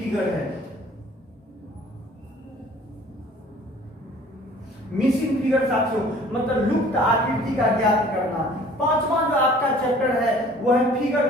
है। मिसिंग फिगर साथियों मतलब लुप्त आकृति का ज्ञात करना। पांचवा जो आपका चैप्टर है वो है फिगर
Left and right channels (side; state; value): both; normal; correlation 0.51